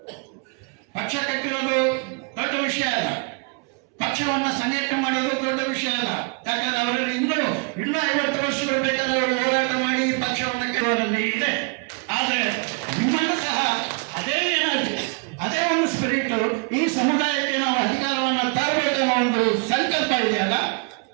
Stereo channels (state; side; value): quieter; left; 32.8 dB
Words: ಪಕ್ಷ ಕಟ್ಟಿರೋದು ದೊಡ್ಡ ವಿಷಯ ಅಲ್ಲ, ಪಕ್ಷವನ್ನ ಸಂಘಟನೆ ಮಾಡೋದು ದೊಡ್ಡ ವಿಷಯ ಅಲ್ಲ. ಯಾಕಂದ್ರೆ ಅವರಲ್ಲಿ ಇನ್ನೂ 50 ವರ್ಷಗಳು ಬೇಕಾದ್ರೆ ಅವರು ಹೋರಾಟ ಮಾಡಿ ಪಕ್ಷವನ್ನ ಕೆಲವರಲ್ಲಿ ಇದೆ. ಆದ್ರೆ ನಿಮ್ಮನ್ನು ಸಹ ಅದೇ ಒಂದು ಸ್ಪಿರಿಟ್, ಈ ಸಮುದಾಯಕ್ಕೆ ನಾವು ಅಧಿಕಾರವನ್ನು ತರಬೇಕೆನ್ನೋ ಒಂದು ಸಂಕಲ್ಪ ಇದೆಯಲ್ಲ,